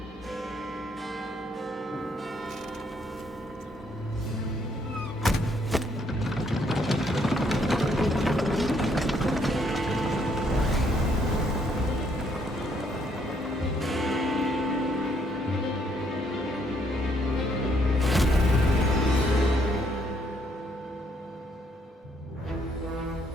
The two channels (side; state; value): both; normal; correlation 0.70